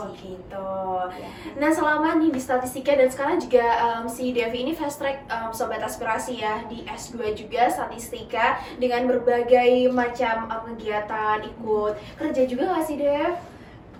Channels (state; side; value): identical; both; correlation 1.00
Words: gitu. Nah selama nih di statistika dan sekarang juga si Devi ini fast track sobat aspirasi ya di S2 juga statistika dengan berbagai macam kegiatan, ikut kerja juga nggak sih Dev?